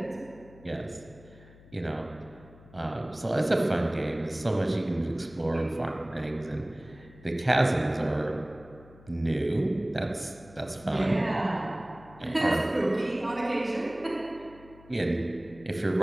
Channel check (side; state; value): left; noise; hum, 22 dB below the sound